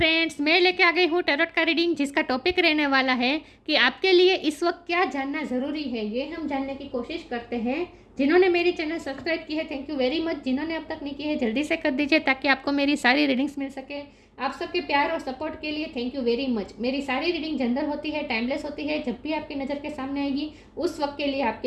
मैं लेके आ गई हूँ टैरोट का रीडिंग जिसका टॉपिक रहने वाला है कि आपके लिए इस वक्त क्या जानना ज़रूरी है। ये हम जानने की कोशिश करते हैं। जिन्होंने मेरी चैनल सब्सक्राइब की है थैंक यू वेरी मच। जिन्होंने अब तक नहीं की है जल्दी से कर दीजिए ताकि आपको मेरी सारी रीडिंग्स मिल सके। आप सबके प्यार और सपोर्ट के लिए थैंक यू वेरी मच। मेरी सारी रीडिंग जनरल होती है, टाइमलेस होती है। जब भी आपकी नज़र के सामने आएगी उस वक्त के लिए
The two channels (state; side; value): identical; both; correlation 1.00